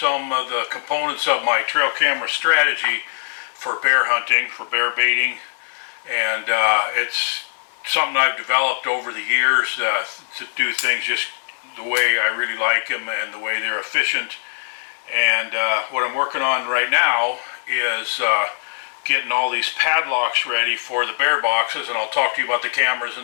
of the components of my trail camera strategy for bear hunting, for bear baiting, and it's something I've developed over the years to do things just the way I really like them and the way they're efficient. And what I'm working on right now is getting all these padlocks ready for the bear boxes, and I'll talk to you about the cameras in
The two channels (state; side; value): silent; right; digital silence